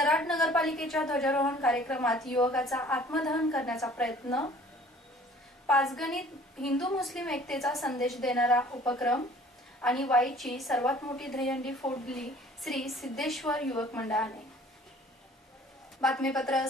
नगरपालिकेच्या ध्वजारोहण कार्यक्रमात युवकाचा आत्मदहन करण्याचा प्रयत्न. पाचगणीत हिंदू मुस्लिम एकतेचा संदेश देणारा उपक्रम आणि वाईची सर्वात मोठी दहीहंडी फोडली श्री सिद्धेश्वर युवक मंडळाने. बातमीपत्र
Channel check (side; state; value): both; normal; correlation 0.52